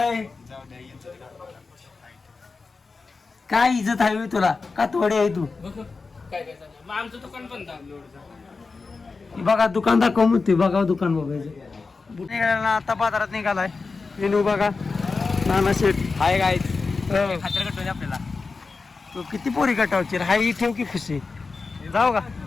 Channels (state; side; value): quieter; right; 4.3 dB